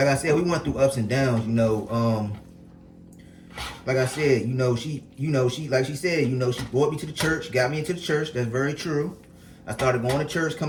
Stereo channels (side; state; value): both; identical; correlation 1.00